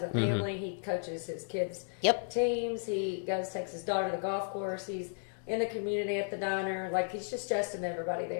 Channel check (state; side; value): silent; right; digital silence